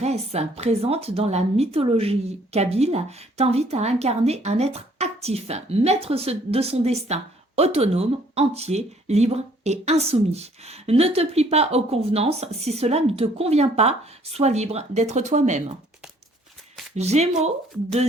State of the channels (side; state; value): both; normal; correlation 0.61